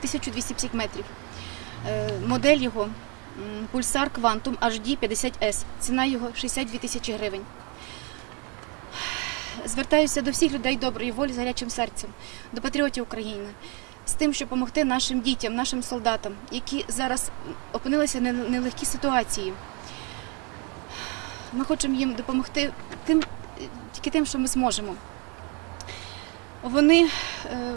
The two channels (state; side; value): quieter; left; 33.1 dB